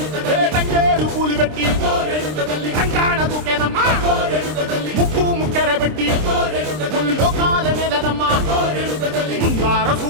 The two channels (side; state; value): left; late; 26 ms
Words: తంగేడు పూలు పెట్టి రంగాణ దూకేనమ్మా, ముక్కు ముక్కెర పెట్టి ముల్లోకాల నెలనమ్మా, ముందార